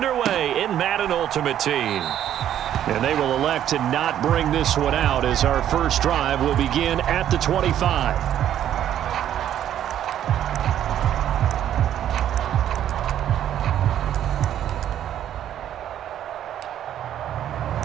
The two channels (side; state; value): left; quieter; 10.9 dB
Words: in Madden Ultimate Team. And they will elect to not bring this one out as our first drive will begin at the 25.